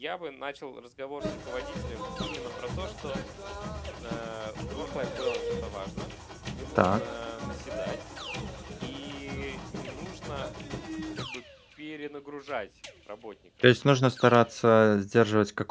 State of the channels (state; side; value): identical; both; correlation 1.00